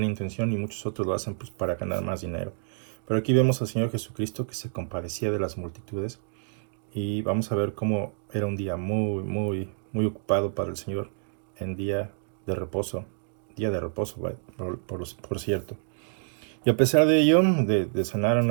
intención y muchos otros lo hacen pues para ganar más dinero. Pero aquí vemos al Señor Jesucristo que se compadecía de las multitudes, y vamos a ver cómo era un día muy, muy, muy ocupado para el Señor en día de reposo, por cierto. Y a pesar de ello, de sanar a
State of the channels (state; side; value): silent; left; digital silence